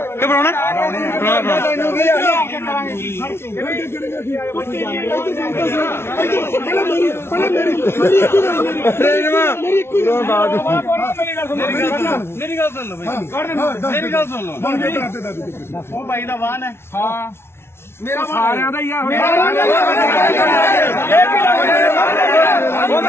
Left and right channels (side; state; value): right; late; 0.12 ms